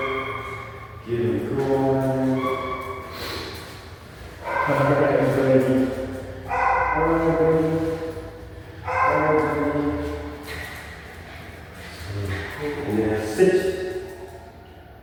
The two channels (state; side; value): identical; both; correlation 1.00